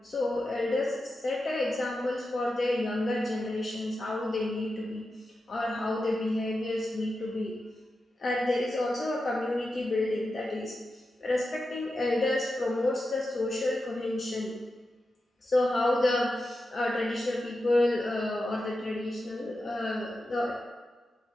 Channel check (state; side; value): normal; both; correlation 0.90